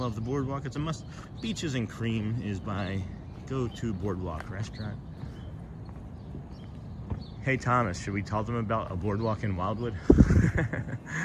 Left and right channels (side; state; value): both; identical; correlation 1.00